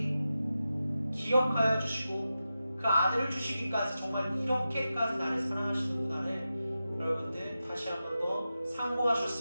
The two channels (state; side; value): inverted; both; correlation -0.92